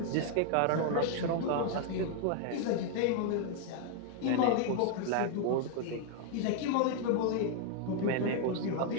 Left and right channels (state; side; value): different; both; correlation 0.00